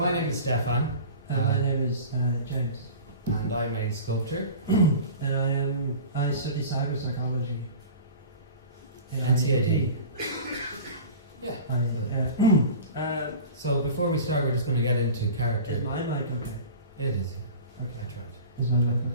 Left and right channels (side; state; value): both; inverted; correlation -0.37